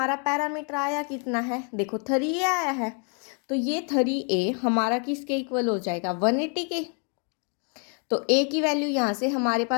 पैरामीटर आया कितना है, देखो 3a आया है, तो ये 3a हमारा किसके इक्वल हो जाएगा 180 के। तो a की वैल्यू यहाँ से हमारे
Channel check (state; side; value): quieter; right; 39.5 dB